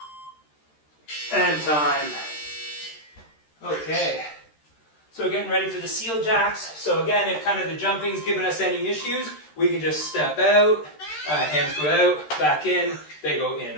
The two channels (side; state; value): right; late; 13 ms